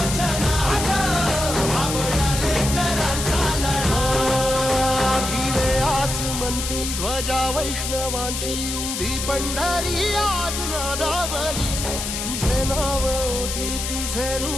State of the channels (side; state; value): left; noise; hiss, 4 dB below the sound